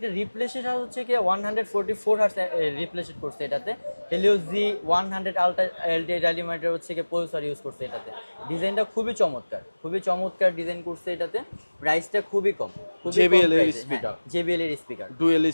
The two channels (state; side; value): inverted; both; correlation -1.00